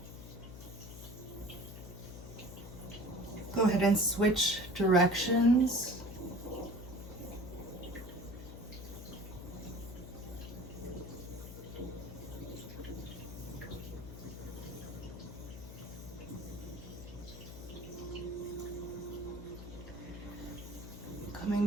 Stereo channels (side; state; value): left; noise; hum, 12 dB below the sound